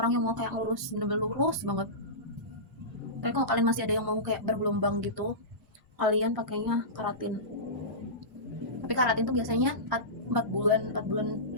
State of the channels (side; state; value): both; normal; correlation -0.19